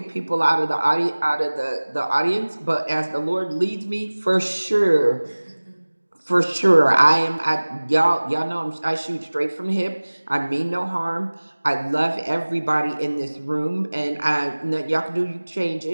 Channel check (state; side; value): inverted; both; correlation -1.00